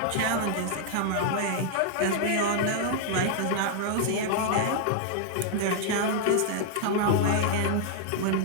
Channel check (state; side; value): different; both; correlation 0.00